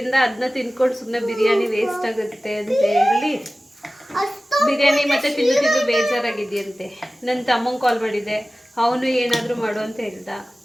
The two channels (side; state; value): both; normal; correlation 0.96